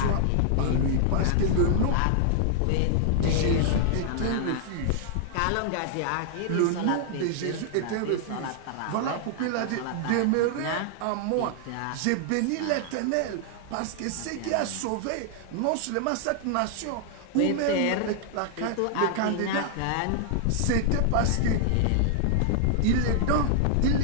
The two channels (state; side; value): different; both; correlation 0.00